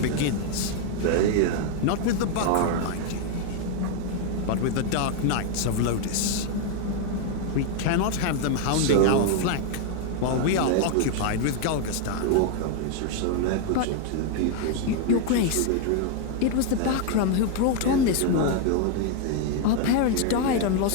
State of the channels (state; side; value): different; both; correlation 0.00